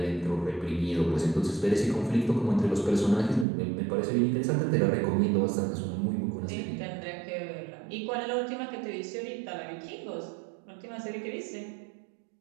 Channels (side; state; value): left; drops out; at 3.5 s